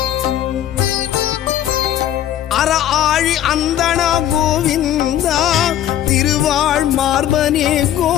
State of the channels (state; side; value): quieter; right; 11.7 dB